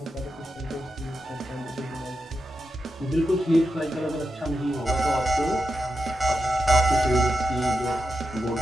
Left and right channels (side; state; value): both; normal; correlation 0.88